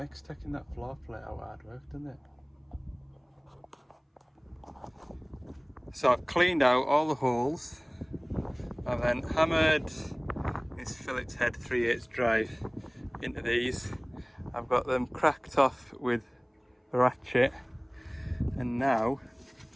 taking that floor plate out hard work, doesn't it? So I've cleaned out all the holes. I've then hammered this fillet's head 3/8 drive into these. I've got them cracked off with the ratchet, and now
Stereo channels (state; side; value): identical; both; correlation 1.00